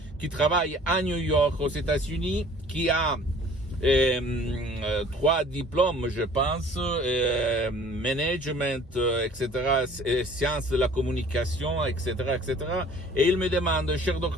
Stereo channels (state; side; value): normal; both; correlation 0.51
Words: qui travaille à New York, aux États-Unis, qui a 3 diplômes, je pense, management, etc., sciences de la communication, etc., etc. Et il me demande, cher